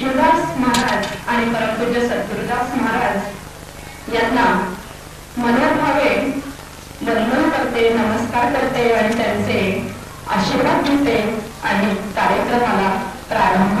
महाराज आणि परमपूज्य सद्गुरुदास महाराज यांना मनोभावे वंदन करते, नमस्कार करते आणि त्यांचे आशीर्वाद घेते आणि कार्यक्रमाला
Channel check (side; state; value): both; identical; correlation 1.00